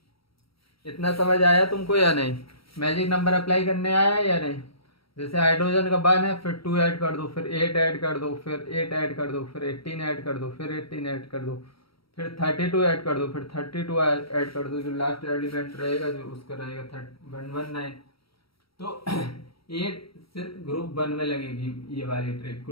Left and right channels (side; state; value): right; late; 0.75 ms